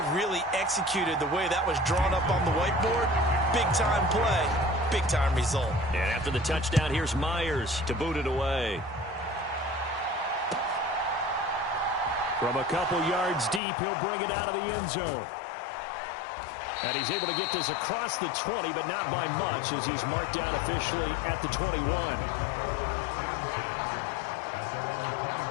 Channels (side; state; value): right; drops out; at 13.6 s